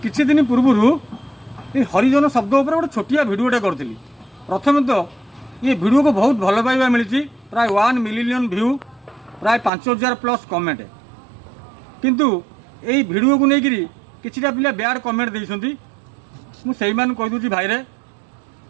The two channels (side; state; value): left; drops out; at 9.7 s